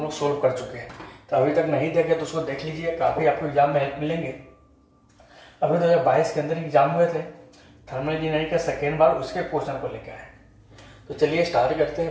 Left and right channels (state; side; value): identical; both; correlation 1.00